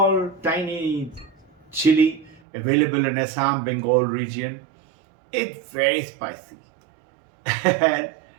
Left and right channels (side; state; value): left; drops out; at 2.4 s